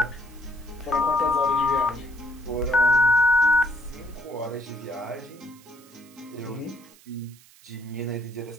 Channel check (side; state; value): right; noise; hiss, 25 dB below the sound